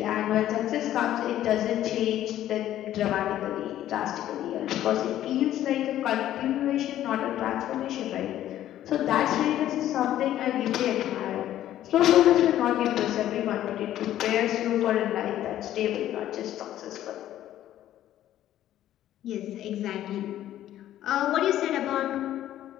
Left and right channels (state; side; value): quieter; right; 12.6 dB